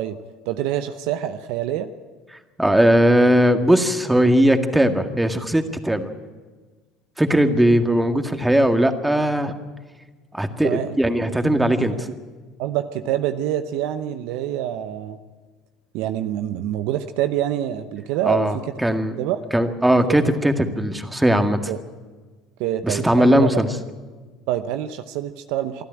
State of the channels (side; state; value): both; normal; correlation 0.80